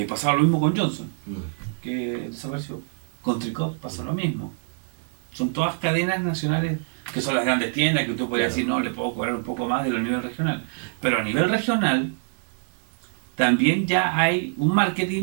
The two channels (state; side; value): silent; left; digital silence